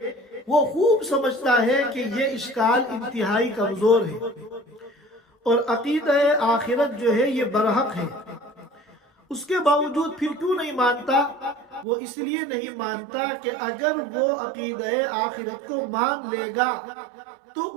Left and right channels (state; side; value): drops out; left; at 11.9 s